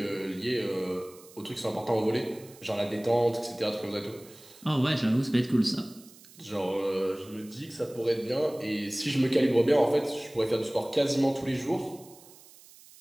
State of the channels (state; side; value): noise; right; hiss, 22 dB below the sound